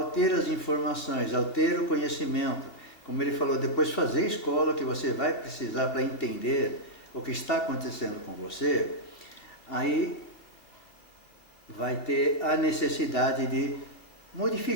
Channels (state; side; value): late; right; 2.6 ms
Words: ter as informações, ao ter o conhecimento, como ele falou, depois fazer escola, que você vai precisar para entender o que está acontecendo com você, aí vai ter a necessidade de